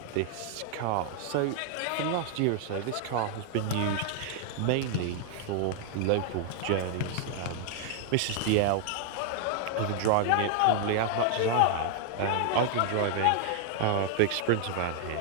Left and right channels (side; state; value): both; different; correlation 0.00